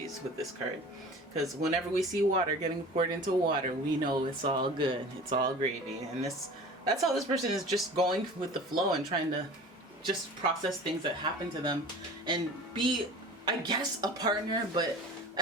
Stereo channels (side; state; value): both; normal; correlation 0.40